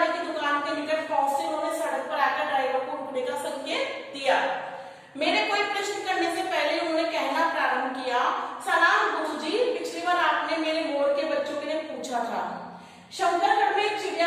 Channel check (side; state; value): both; identical; correlation 1.00